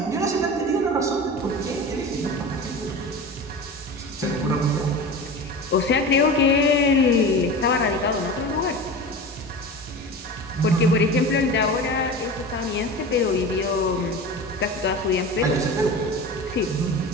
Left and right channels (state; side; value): normal; both; correlation 0.31